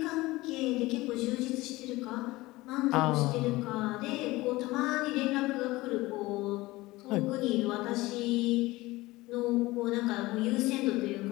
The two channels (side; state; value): right; quieter; 19.8 dB